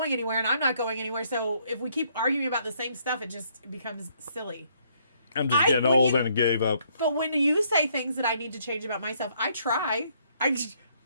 anywhere and I'm not going anywhere. So if we keep arguing about the same stuff, it just becomes silly. I'm just getting old and gave up. But when you say things that I need to change about myself, I try.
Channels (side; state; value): both; inverted; correlation -0.69